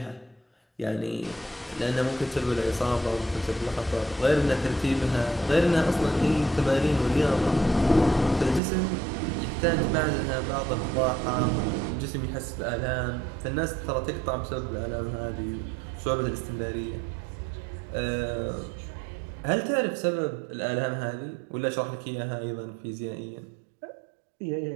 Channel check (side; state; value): left; drops out; at 8.6 s